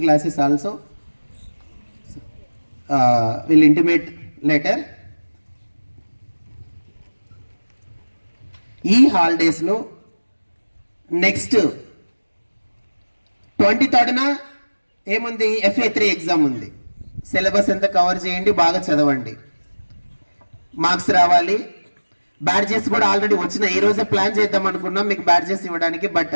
classes also will intimate later. ఈ హాలిడేస్లో నెక్స్ట్ 23rd ఏముంది, FA3 ఎగ్జామ్ ఉంది. సిలబస్ ఎంత కవర్ చేయండి, బాగా చదవండి, మార్క్స్ రావాలి. బ్యాడ్జెస్ కూడా ఆల్రెడీ వచ్చినాయి. ఈ రోజే ప్లాన్ చేద్దాం అనుకున్నాం మీకు బ్యాడ్జెస్ ఇవ్వడానికి, బట్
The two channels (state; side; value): inverted; both; correlation -1.00